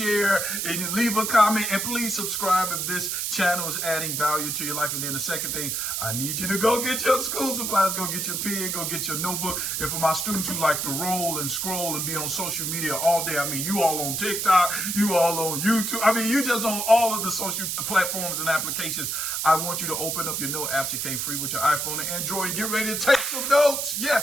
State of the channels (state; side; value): noise; right; hiss, 1 dB below the sound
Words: and you leave a comment, and please subscribe if this channel is adding value to your life. And then the second thing, I need you to go get your school supplies, go get your pen, go get your notebook. And for my students who like to roll and scroll and be on social media all day, you all on TikTok, you all on YouTube, you just on all of the social platforms and applications. I want you to open up your note apps. It came free with your iPhone and Android, and get ready to take some notes.